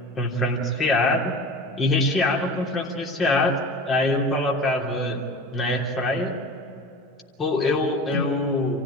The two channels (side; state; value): both; normal; correlation 0.35